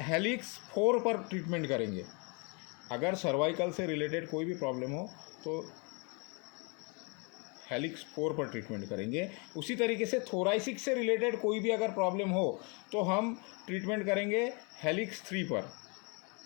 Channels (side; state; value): right; quieter; 33.0 dB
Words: हेलिक्स 4 पर ट्रीटमेंट करेंगे। अगर सर्वाइकल से रिलेटेड कोई भी प्रॉब्लम हो तो हेलिक्स 4 पर ट्रीटमेंट करेंगे। उसी तरीके से थोराइसिक से रिलेटेड कोई भी अगर प्रॉब्लम हो तो हम ट्रीटमेंट करेंगे हेलिक्स 3 पर,